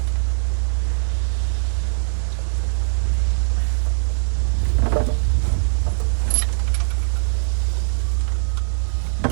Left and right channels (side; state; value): left; silent; digital silence